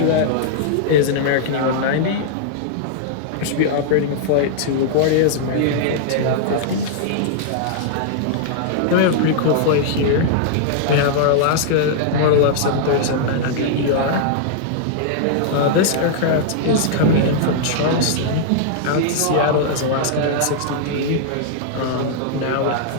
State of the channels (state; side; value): different; both; correlation -0.01